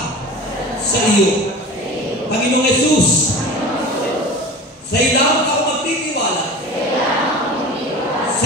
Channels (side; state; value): both; normal; correlation 0.36